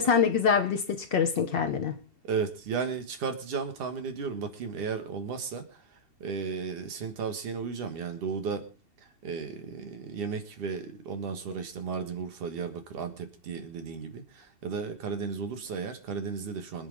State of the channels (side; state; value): left; late; 2.7 ms